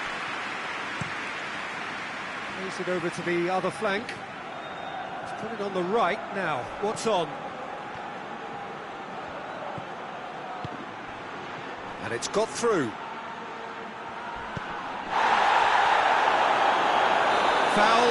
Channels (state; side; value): identical; both; correlation 1.00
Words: Plays it over to the other flank. He's put it on the right now. What's on? And it's got through.